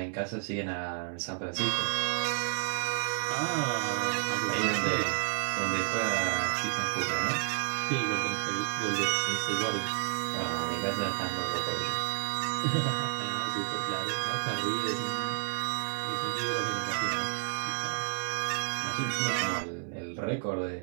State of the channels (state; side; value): silent; left; 57 dB below the other